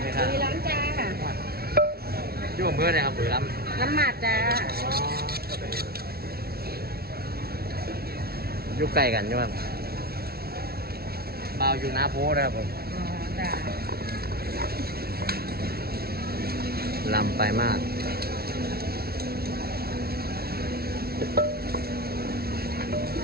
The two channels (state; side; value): late; left; 0.45 ms